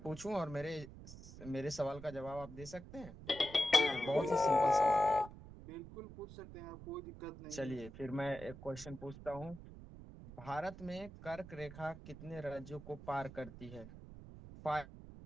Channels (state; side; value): noise; right; rumble, 15 dB below the sound